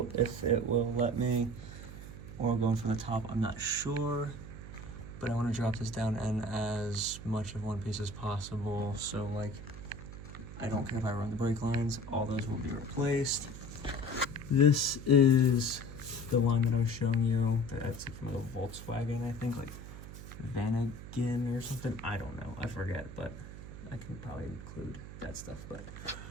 if it will let me. Or going from the top, I'm not sure. But I want to drop this down in as much of one piece as possible. So like, I don't care if I run the brake lines, all those will be replaced. This is the line that I was showing you. That's from the Volkswagen, I think, like Vanagon or something. I don't know, I forget, but I can probably include that stuff. But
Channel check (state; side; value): noise; right; hum, 12 dB below the sound